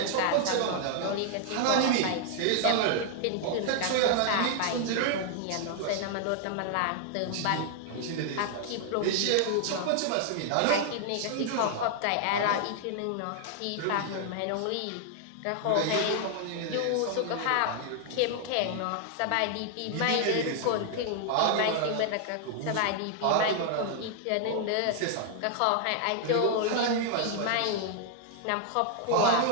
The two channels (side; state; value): both; different; correlation 0.00